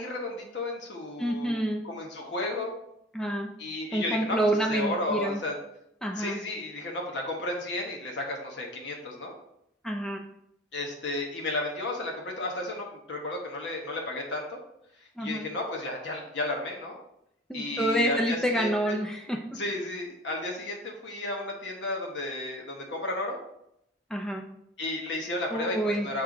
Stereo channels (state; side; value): normal; both; correlation 0.39